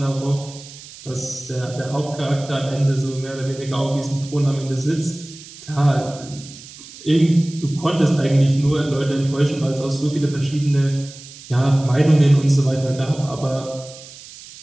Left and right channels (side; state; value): right; noise; hiss, 17 dB below the sound